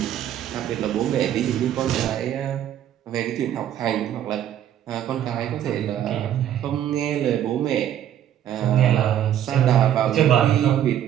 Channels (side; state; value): left; quieter; 10.8 dB